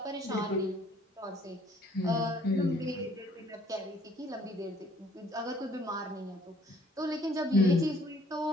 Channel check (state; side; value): normal; both; correlation 0.60